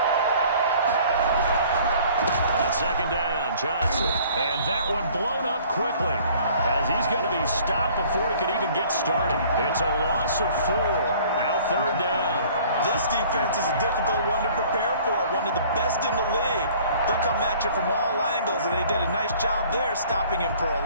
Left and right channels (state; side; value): inverted; both; correlation -0.53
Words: On second down, Johnson. And that one blown up quickly as he's going to be stopped before he could even get started. It's a loss of 4. Now third down. This defense is a difficult one to prepare for, one of the best in the league. They'll come at you from all angles, and they did a nice job there stopping him for a